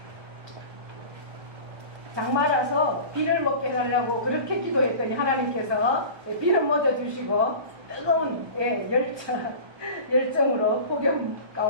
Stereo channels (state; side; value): late; left; 1.3 ms